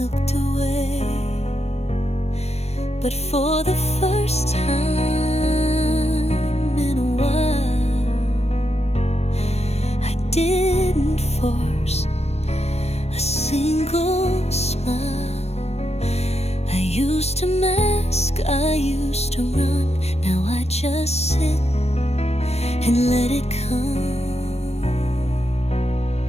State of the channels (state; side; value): late; right; 0.31 ms